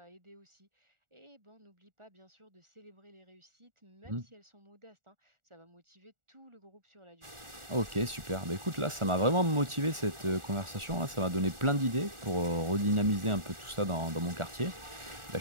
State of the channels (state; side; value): late; left; 1.4 ms